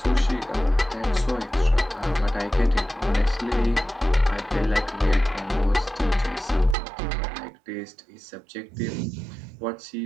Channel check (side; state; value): left; drops out; at 6.8 s